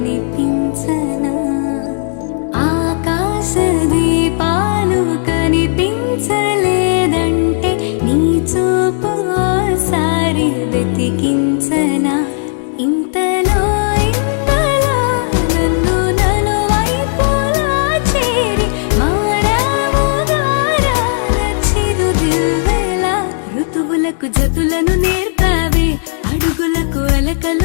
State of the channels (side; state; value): right; silent; digital silence